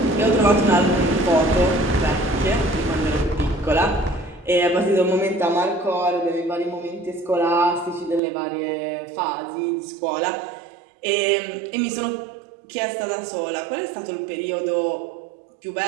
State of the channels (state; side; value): drops out; left; at 8.2 s